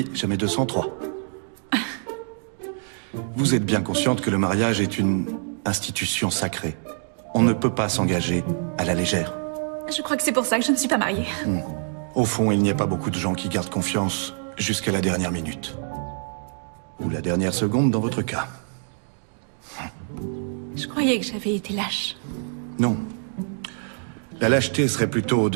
jamais 203. Vous êtes bien consciente que le mariage est une institution sacrée. On ne peut pas s'engager à la légère. Je crois que c'est pour ça que je ne suis pas mariée. Au fond, il n'y a pas beaucoup de gens qui gardent confiance jusqu'à la dernière minute. Ou la dernière seconde dans votre cas. Je croyais que j'avais été lâche. Non. La lâcheté serait plutôt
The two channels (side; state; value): left; silent; 62 dB below the other